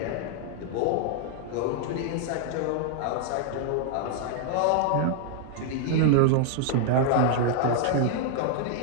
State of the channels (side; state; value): both; different; correlation -0.01